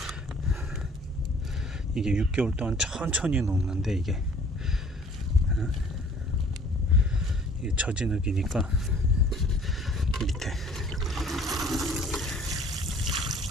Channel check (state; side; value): normal; both; correlation 0.54